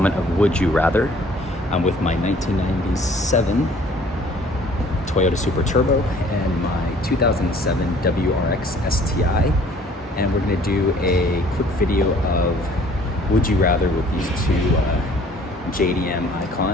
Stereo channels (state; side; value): normal; both; correlation 0.55